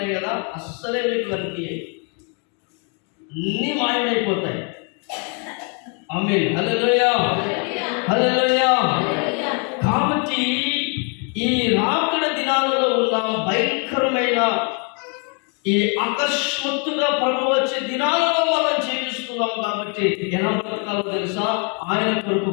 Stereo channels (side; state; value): right; quieter; 37.9 dB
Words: కదా, అస్సలే మీకు కనిపించాయి, అన్నీ మాయమైపోతాయి. ఆమేన్. హల్లెలూయా. కాబట్టి ఈ రాకడ దినాలలో ఉన్న భయంకరమైన ఈ అకస్మాత్తుగా ప్రభు వచ్చే దినాలలో మనం జీవిస్తున్నాం. కాబట్టి ఎలా బ్రతకాలో తెలుసా? ఆయన కొరకు